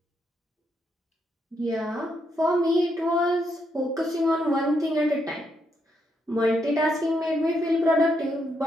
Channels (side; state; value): both; normal; correlation 0.78